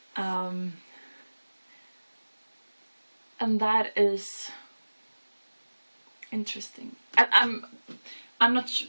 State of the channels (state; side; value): inverted; both; correlation -1.00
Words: And that is interesting. I'm not